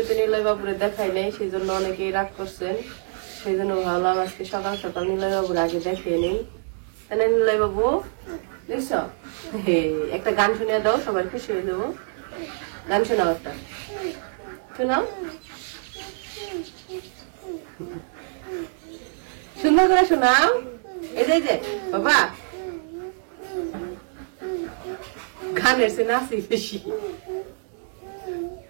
নিলয় বাবুরে দেখাই নাই, সেই জন্য অনেকেই রাগ করছেন। সেই জন্য ভাবলাম আজকে সকাল সকাল নিলয় বাবুর আগে দেখিয়ে নেই, তাই না? নিলয় বাবু দেখছ, একটা গান শুনিয়ে দাও, সবাই খুশি হয়ে যাবো। গান শোনাও, একটা শোনাও, সুন্দর করে শোনাও। এই যে বাবা গানের সে নাচি বেশি,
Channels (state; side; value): silent; left; 62 dB below the other